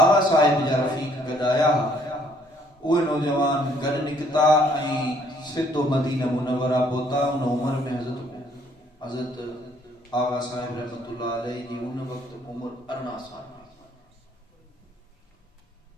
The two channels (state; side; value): normal; both; correlation 0.64